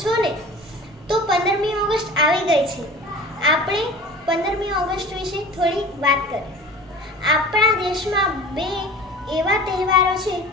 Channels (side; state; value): both; normal; correlation 0.40